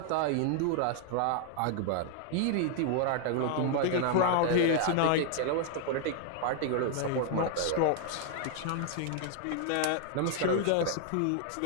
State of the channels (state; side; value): different; both; correlation 0.00